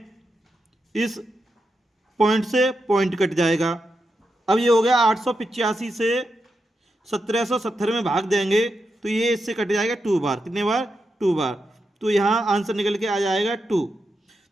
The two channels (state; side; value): normal; both; correlation 0.86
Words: इस पॉइंट से पॉइंट कट जाएगा। अब ये हो गया 885 से 1770 में भाग देंगे तो ये इससे कट जाएगा 2 बार, कितने बार 2 बार। तो यहाँ आंसर निकल के आ जाएगा 2।